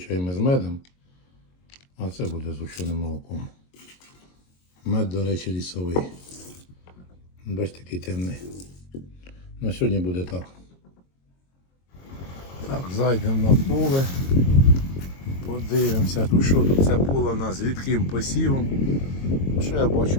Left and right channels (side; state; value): right; late; 22 ms